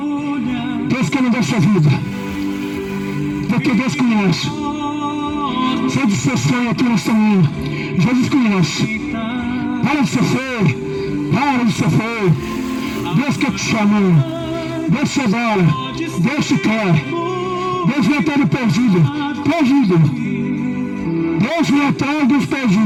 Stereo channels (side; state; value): both; identical; correlation 1.00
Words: Deus quer mudar sua vida. Porque Deus conhece. Sai de seu sonho aqui nesta manhã. Jesus conhece. Para de ser feio. Para de ser feio. Deus quer te chamar. Deus te adora. Deus te quer. Deus vem atrás do perdido. Perdido. Deus vem atrás dos